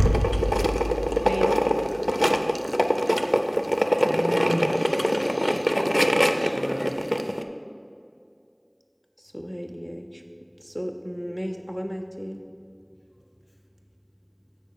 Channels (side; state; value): both; identical; correlation 1.00